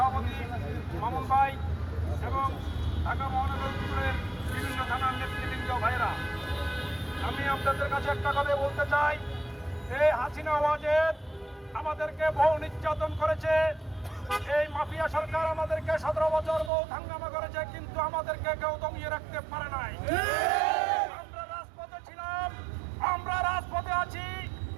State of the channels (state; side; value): drops out; left; at 16.7 s